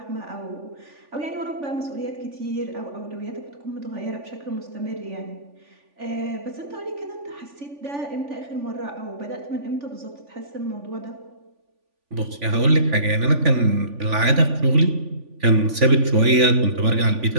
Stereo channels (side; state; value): left; late; 3.5 ms